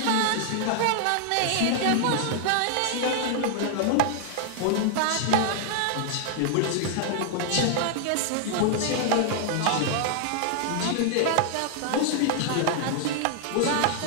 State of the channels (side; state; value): both; different; correlation 0.00